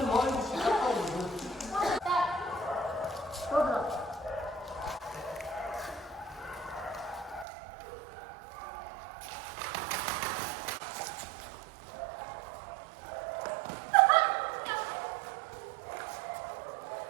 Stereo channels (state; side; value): drops out; left; at 7.5 s